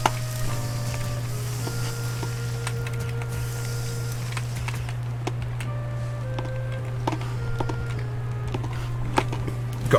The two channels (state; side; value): identical; both; correlation 1.00